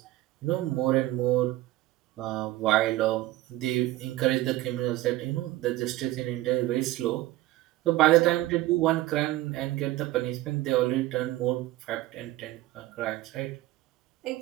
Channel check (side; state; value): left; quieter; 16.7 dB